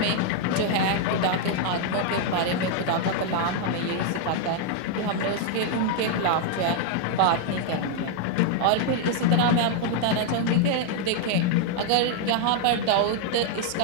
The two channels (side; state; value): both; different; correlation 0.00